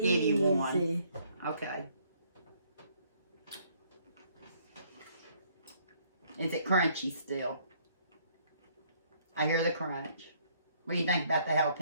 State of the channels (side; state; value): both; inverted; correlation -0.65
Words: give you one. Okay. Is it crunchy still? I hear the crunch. What do you think about the